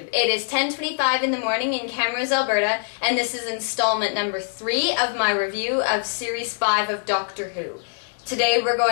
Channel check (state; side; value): silent; right; digital silence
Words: it is 10:25 in the morning in Camrose, Alberta, and this is installment number 3 of my review of Series 5 of Doctor Who. Today we're